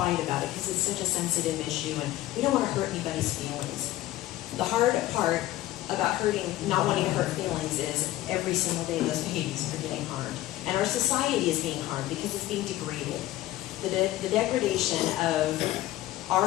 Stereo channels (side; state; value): right; quieter; 15.5 dB